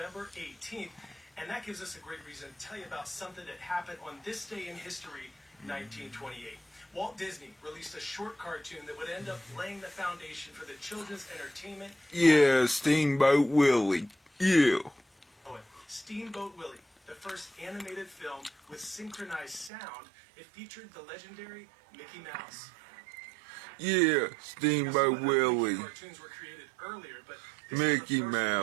18th, and that gives us a great reason to tell you about something that happened on this day in history, 1928. Walt Disney released a short cartoon that would end up laying the foundation for the children's entertainment. Yeah, Steamboat Willie. Yeah. Steamboat Willie, the first animated film with synchronized sound. It featured the legendary Mickey Mouse. Yeah, Steamboat Willie. Cartoons were created earlier, but Mickey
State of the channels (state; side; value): drops out; left; at 19.7 s